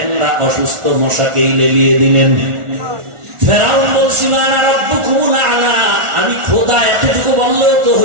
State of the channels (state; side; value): late; left; 1.4 ms